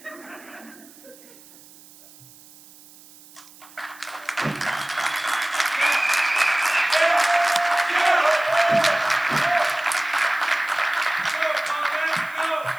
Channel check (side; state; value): right; noise; hiss, 23 dB below the sound